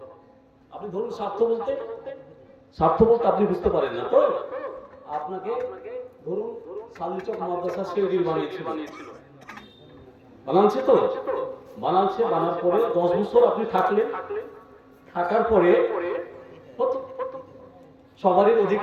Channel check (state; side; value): identical; both; correlation 1.00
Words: আপনি ধরুন স্বার্থ বলতে, স্বার্থ বলতে আপনি বুঝতে পারেন না তো, আপনাকে ধরুন সাল্লিচক মাদ্রাসা সেক্রেটারি বানিয়েছিল, বানাচ্ছে তো, বানাচ্ছে, বানার পরে 10 বছর আপনি থাকলেন, থাকার পরে সবারই